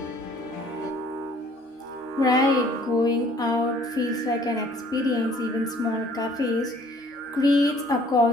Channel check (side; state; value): both; normal; correlation 0.57